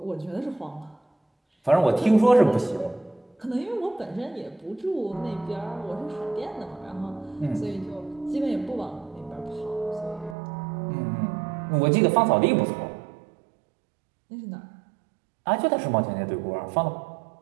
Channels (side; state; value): left; drops out; at 10.4 s